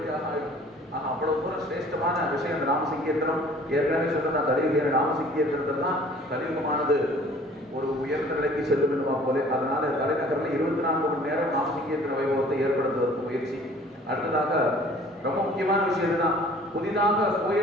ஆயிடும். அவ்வளவு தூரம் சிரேஷ்டமான விஷயம் இந்த நாம சங்கீர்த்தனம். ஏற்கனவே சொன்ன கலியுக நாம சங்கீர்த்தனத்தில் தான் கலியுகமானது ஒரு உயர்ந்த நிலைக்கு செல்லும் என்னவா போல. அதனால தலைநகரில் 24 மணி நேரம் நாம சங்கீர்த்தன வைபவத்தை ஏற்படுத்துவதற்கு முயற்சி. அடுத்ததாக ரொம்ப முக்கியமான விஷயம் தான், புதிதாக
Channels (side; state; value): both; normal; correlation 0.51